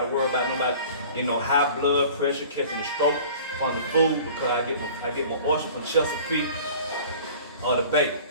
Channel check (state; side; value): inverted; both; correlation -0.44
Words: worry about nobody, you know, high blood pressure, catching a stroke from the food, because I get my oyster from Chesapeake or the bacon.